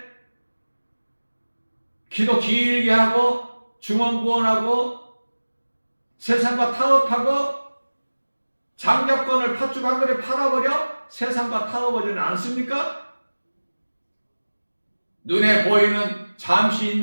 기도 길게 하고 중언부언하고 세상과 타협하고 장자권을 팥죽 한 그릇 팔아버려 세상과 타협하지는 않습니까? 눈에 보이는 잠시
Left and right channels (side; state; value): both; inverted; correlation -1.00